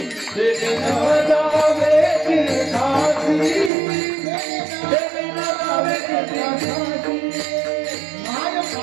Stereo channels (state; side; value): drops out; left; at 3.7 s